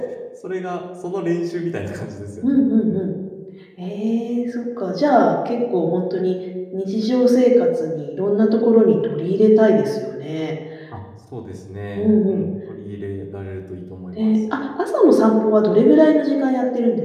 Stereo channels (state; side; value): identical; both; correlation 1.00